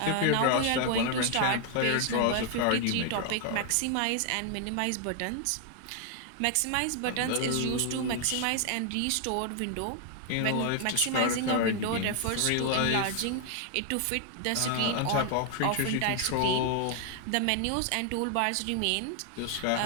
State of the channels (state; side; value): different; both; correlation 0.00